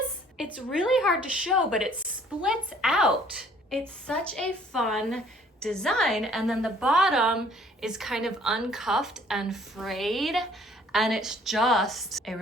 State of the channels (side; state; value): both; normal; correlation 0.58